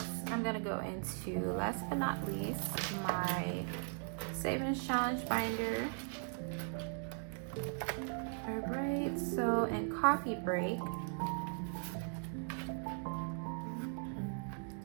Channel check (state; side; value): silent; left; 52 dB below the other